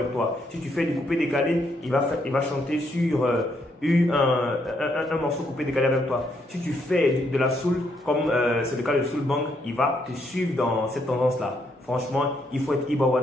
toi. Si tu fais du coupé décalé, il va chanter sur un morceau coupé décalé avec toi. Si tu fais de la soul, comme c'est le cas de Soul Bang, il va te suivre dans cette tendance-là. Franchement, il faut être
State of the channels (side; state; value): both; normal; correlation 0.74